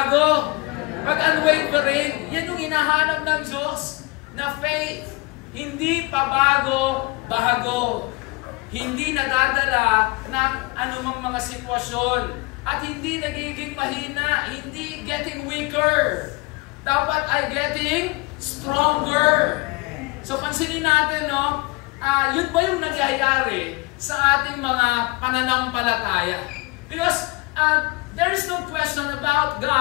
Pag unwavering, yan yung hinahanap ng Diyos na faith. Hindi pabago, bago. Hindi nadadala ng anumang mga sitwasyon. At hindi nagiging mahina. Hindi getting weaker. Dapat ay getting stronger. So pansinin natin, no? Yun ba yung nagyayari sa ating mga pananampalataya? Because there is no question about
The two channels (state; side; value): quieter; right; 25.3 dB